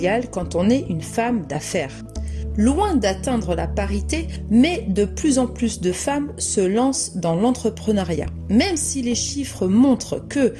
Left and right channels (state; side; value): identical; both; correlation 1.00